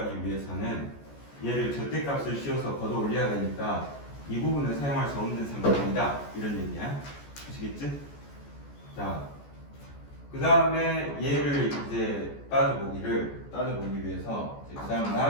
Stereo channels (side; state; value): right; late; 14 ms